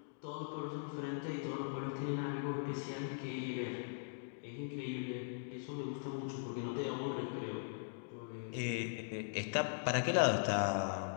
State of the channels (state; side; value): silent; right; digital silence